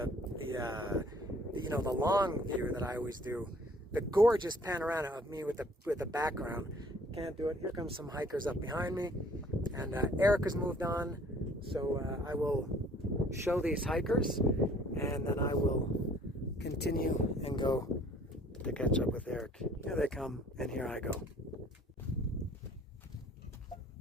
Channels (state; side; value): normal; both; correlation 0.56